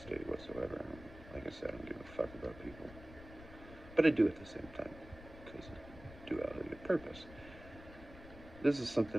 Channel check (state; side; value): noise; left; rumble, 16 dB below the sound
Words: whatsoever. Like I said, I don't give a fuck about people. But I do at the same time, because of duality of purpose. This is